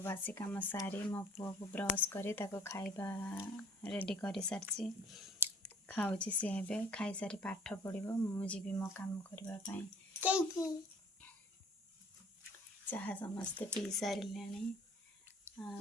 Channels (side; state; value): both; normal; correlation 0.54